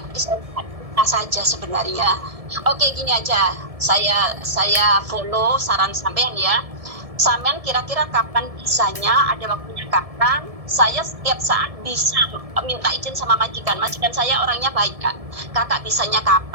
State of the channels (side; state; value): left; late; 1.7 ms